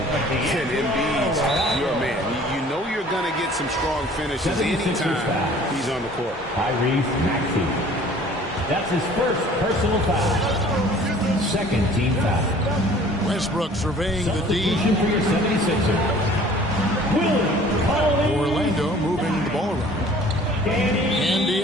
then Embiid's your man. You know you're going to get some strong finishes anytime he's on the court. Tyrese Maxey. That's his first personal foul. Second team foul. Westbrook surveying the D. Substitution for your 76ers. Orlando moving the ball around. And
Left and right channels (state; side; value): normal; both; correlation 0.50